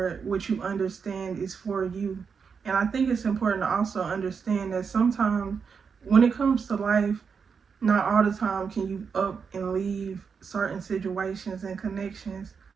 what you understand is for you. And I think it's important to also understand that sometimes when it comes to life, not all the time can you up and leave certain situations and connections.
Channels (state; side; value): quieter; left; 6.0 dB